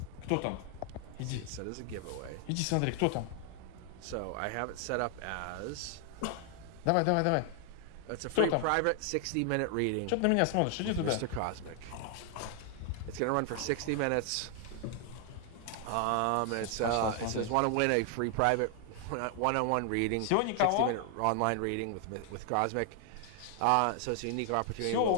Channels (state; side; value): different; both; correlation 0.00